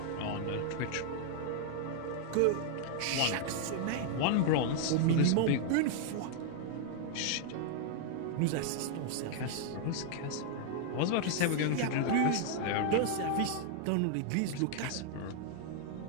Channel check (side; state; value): both; different; correlation 0.00